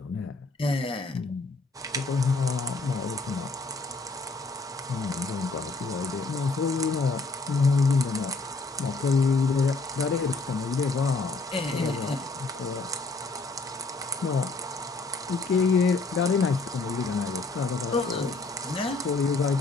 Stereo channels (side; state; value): right; quieter; 3.6 dB